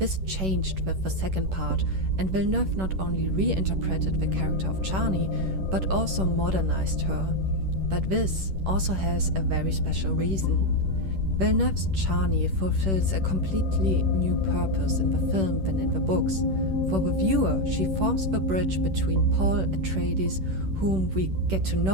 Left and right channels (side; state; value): left; late; 10 ms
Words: changed with the second part, and Villeneuve not only reinterpreted the character of Chani, but also modernized her. But this also has a very special reason. Villeneuve's Chani fulfills a completely new purpose in the film than in the books. For the viewer, she forms the bridge between Paul Atreides, whom we get to